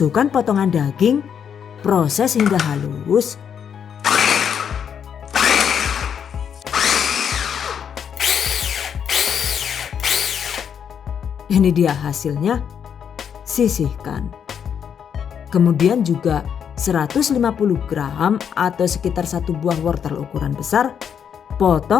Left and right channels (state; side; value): quieter; right; 7.9 dB